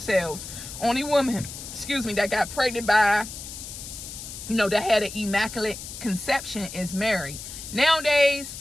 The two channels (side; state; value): left; noise; hiss, 11 dB below the sound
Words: Only woman, that got pregnant by, you know, that had an immaculate conception is married. Nowadays,